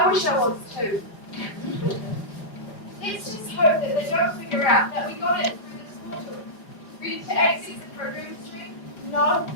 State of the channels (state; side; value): late; right; 4.8 ms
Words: wish I was too. Let's just hope that they don't figure out that we got it through this portal. Ready to access the program stream? No,